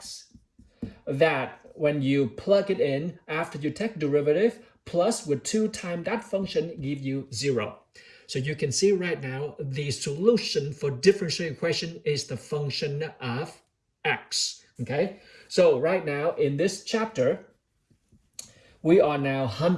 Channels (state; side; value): identical; both; correlation 1.00